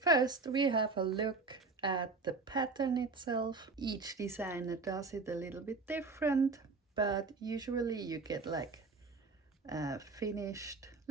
First, we have a look at the pattern itself. Each designer does it a little bit different, but usually you get like a finished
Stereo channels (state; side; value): quieter; left; 3.9 dB